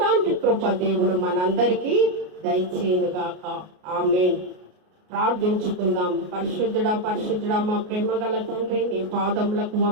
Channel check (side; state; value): left; late; 33 ms